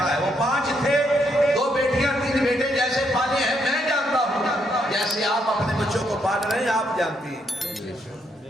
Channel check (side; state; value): both; normal; correlation 0.75